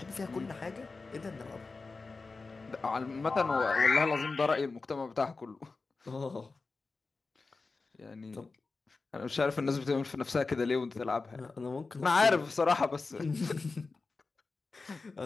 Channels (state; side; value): quieter; right; 4.0 dB